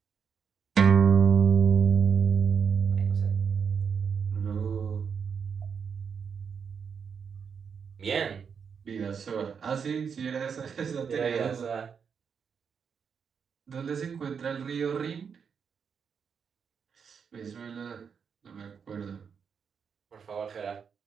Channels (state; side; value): quieter; left; 6.6 dB